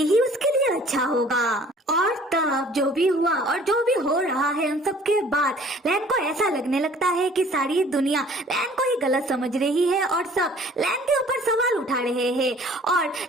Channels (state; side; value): normal; both; correlation 0.52